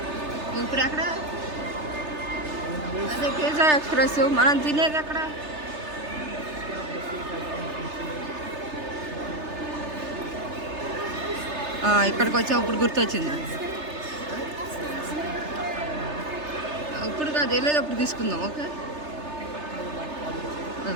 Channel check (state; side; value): late; left; 3.3 ms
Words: ఇప్పుడు ఎక్కడ? అదే పిజ్జా ఎక్స్ప్రెస్ మనం తినేది ఎక్కడ? ఇక్కడికి వచ్చా, ఇప్పుడు గుర్తొచ్చింది. ఇప్పుడు కాదు, వెళ్ళేది అప్పుడు తీసుకుందాం. ఓకే,